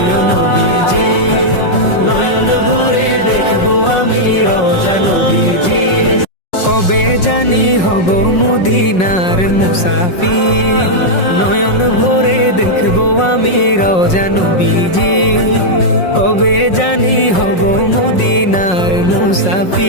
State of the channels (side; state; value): right; late; 5.5 ms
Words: নবীজি। নয়ন ভরে দেখবো আমি রওজা নবীজি। কবে জানি হব মদিনার মুসাফির, নয়ন ভরে দেখবো আমি রওজা নবীজি। কবে জানি হব মদিনার